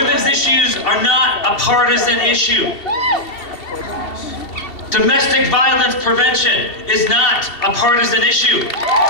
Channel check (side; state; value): right; late; 2.7 ms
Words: issues are not a partisan issue. Domestic violence prevention is not a partisan issue.